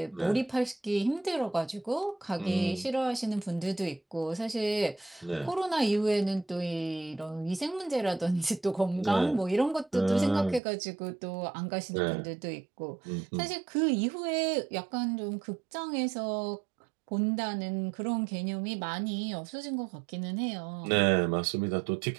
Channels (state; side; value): drops out; left; at 10.6 s